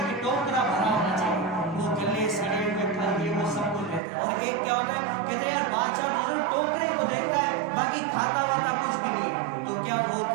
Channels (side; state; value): left; drops out; at 4.0 s